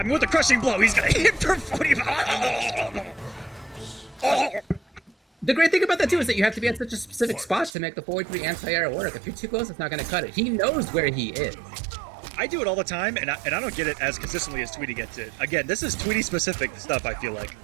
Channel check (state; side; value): drops out; left; at 7.8 s